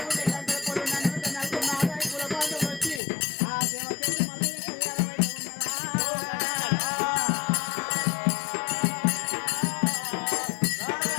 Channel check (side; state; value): right; drops out; at 3.0 s